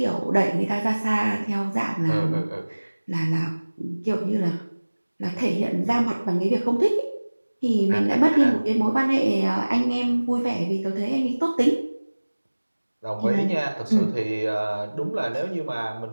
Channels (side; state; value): both; inverted; correlation -1.00